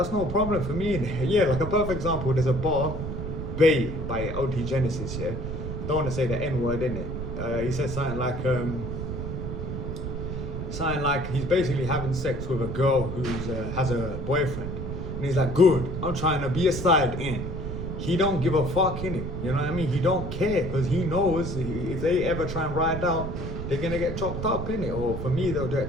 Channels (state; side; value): noise; right; rumble, 5 dB below the sound